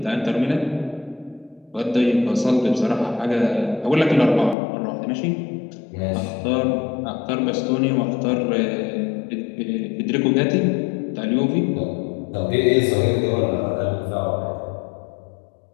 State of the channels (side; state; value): right; drops out; at 4.5 s